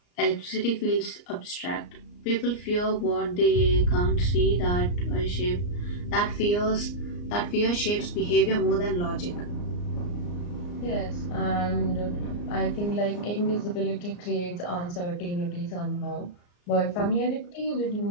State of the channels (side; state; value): right; late; 34 ms